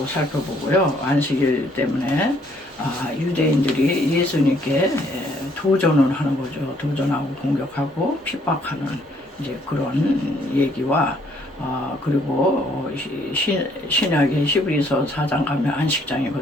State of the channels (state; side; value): normal; both; correlation 0.66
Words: 살펴보고요. 안식일 때문에 유대인들이 예수님께 도전을 하는 거죠. 도전하고 공격하고 핍박하는 이제 그런 얘기와 그리고 신약의 히브리서 4장 가면